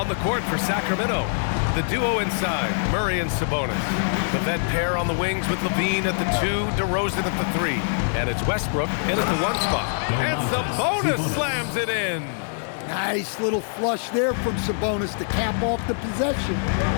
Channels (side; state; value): right; silent; digital silence